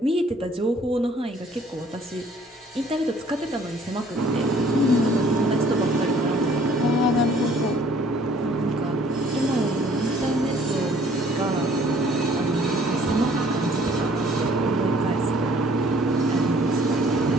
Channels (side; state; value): both; normal; correlation 0.58